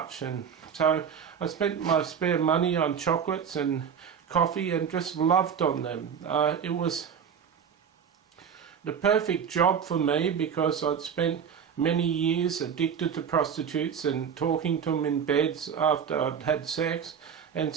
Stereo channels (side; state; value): left; quieter; 7.5 dB